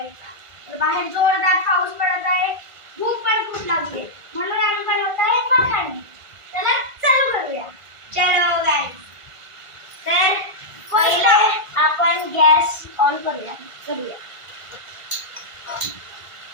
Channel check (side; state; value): left; late; 1.5 ms